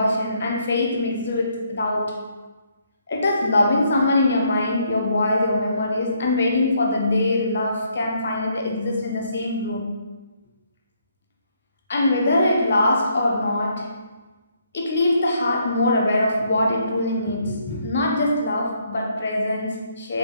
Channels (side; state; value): both; inverted; correlation -0.71